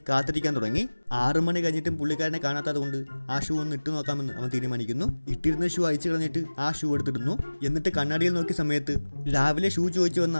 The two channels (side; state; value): both; inverted; correlation -1.00